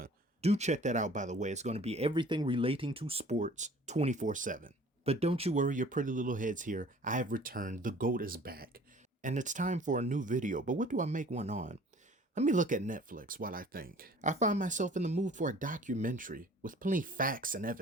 Do check that out, by the way. It's going to be everything relating to sports 24/7. But don't you worry your pretty little heads here. I have returned. The GOAT is back. And it's time for a new video. But what do I make one on? Let me look at Netflix while I think. I find myself in the mood for a documentary with plenty of facts and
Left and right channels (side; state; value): both; normal; correlation 0.49